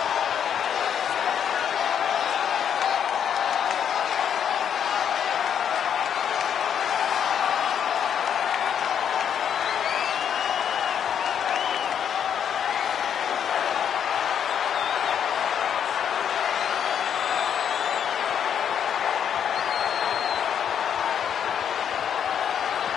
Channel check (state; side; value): quieter; right; 8.5 dB